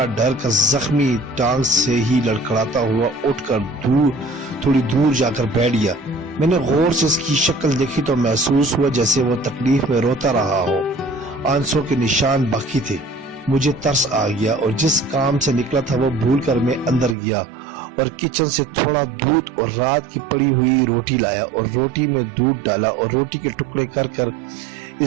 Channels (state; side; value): drops out; left; at 17.2 s